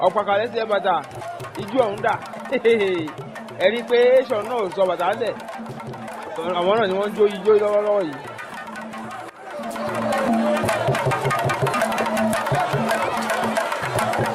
ọ̀pàkàlẹ́ sí ẹ bàtà ijú ọ̀hún dà ẹ̀rí pé ṣọ̀ náà sọ bàtà lẹ̀ àwọn náà ni wọ́n jó ijó lọ́wọ́lọ́wọ́ yìí.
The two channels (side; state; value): both; identical; correlation 1.00